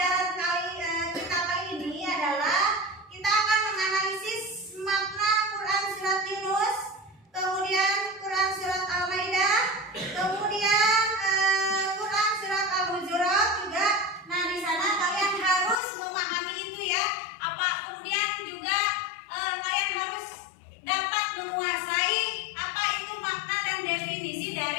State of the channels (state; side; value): drops out; right; at 15.8 s